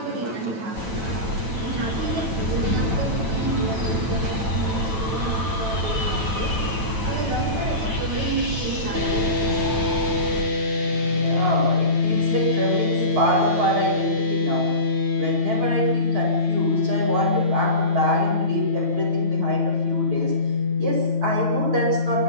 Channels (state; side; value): late; left; 9.1 ms